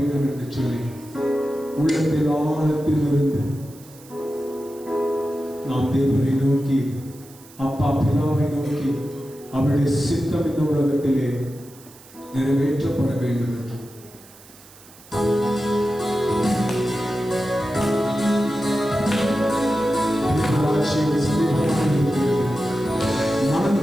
என்று சொல்லி உள்ளத்தில் ஆழத்தில் இருந்து நாம் தேவனை நோக்கி அப்பா பிதாவை நோக்கி அவருடைய சித்தம் இந்த உலகத்திலே நிறைவேற்றப்பட வேண்டும் என்று மனம்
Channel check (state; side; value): noise; right; hiss, 23 dB below the sound